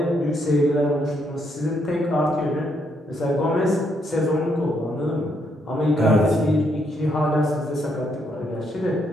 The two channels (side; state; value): both; normal; correlation 0.75